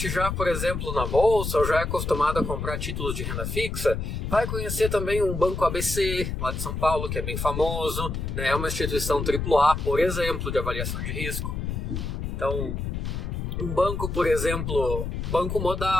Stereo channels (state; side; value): noise; left; rumble, 3 dB below the sound